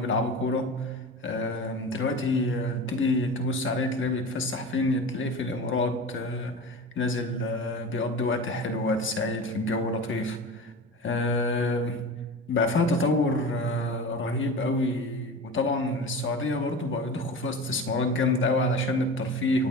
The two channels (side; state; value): both; normal; correlation 0.31